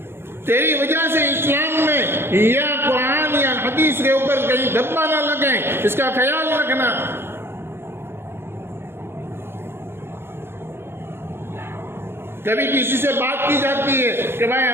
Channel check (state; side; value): late; left; 0.11 ms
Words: तेरी वजह से इस्लाम में या कुरान या हदीस के ऊपर कहीं धब्बा ना लगे, इसका ख्याल रखना। कभी किसी से बात की जाती है कि भाई